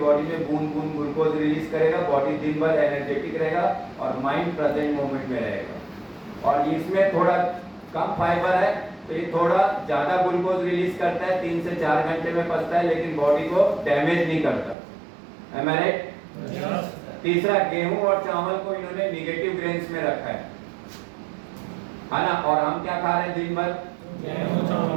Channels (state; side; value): drops out; left; at 14.8 s